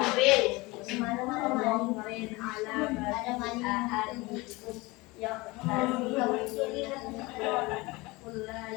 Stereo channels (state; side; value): quieter; right; 23.1 dB